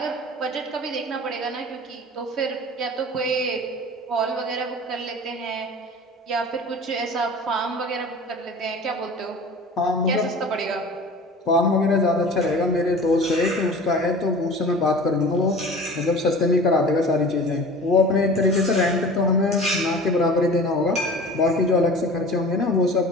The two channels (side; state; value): both; normal; correlation 0.40